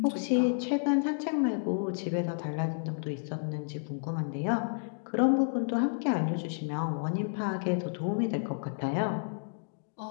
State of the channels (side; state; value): right; silent; digital silence